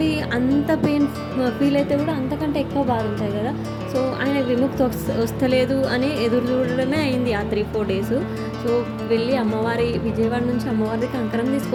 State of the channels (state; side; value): identical; both; correlation 1.00